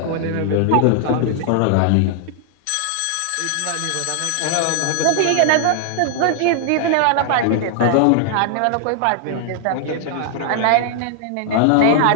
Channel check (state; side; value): different; both; correlation 0.00